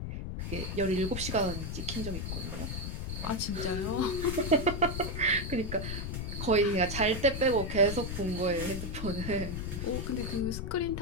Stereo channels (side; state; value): left; noise; rumble, 4 dB below the sound